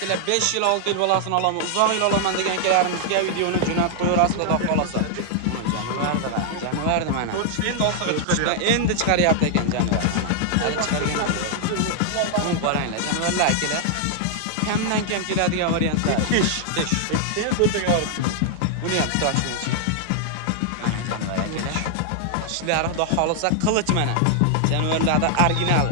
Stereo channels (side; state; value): both; different; correlation 0.00